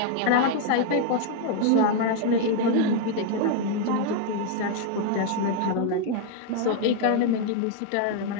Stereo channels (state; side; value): different; both; correlation 0.00